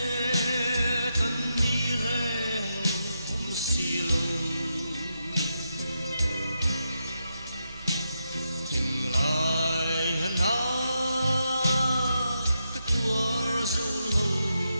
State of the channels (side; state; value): both; inverted; correlation -0.84